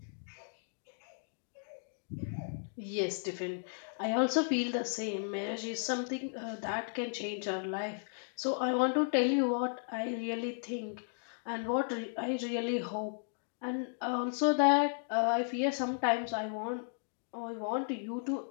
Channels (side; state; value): right; silent; digital silence